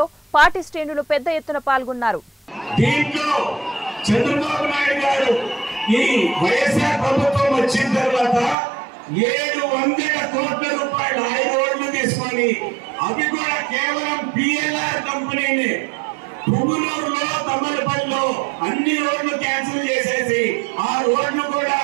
పార్టీ శ్రేణులు పెద్ద ఎత్తున పాల్గొన్నారు. చంద్రబాబు నాయుడు గారు ఈ వైఎస్ఆర్ ప్రభుత్వం వచ్చిన తర్వాత 700 కోట్ల రూపాయలు 5 రోడ్లు తీసుకొని, అవి కూడా కేవలం పిఎల్ఆర్ కంపెనీని పుంగనూరులో తమ్మలపల్లిలో అన్ని రోడ్లు క్యాన్సిల్ చేసేసి ఆ రోడ్లు కూడా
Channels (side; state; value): left; drops out; at 8.6 s